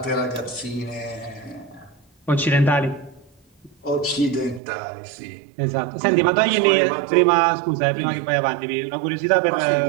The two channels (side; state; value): left; drops out; at 4.6 s